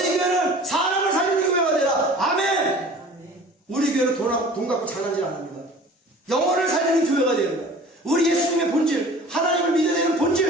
교회는 사람을 살리는 교회가 되라. 아멘. 우리 교회는 돈 갖고 장난질 안 합니다. 영혼을 살리는 교회가 됩니다. 우리 예수님의 본질, 하나님을 믿어야 되는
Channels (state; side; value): normal; both; correlation 0.45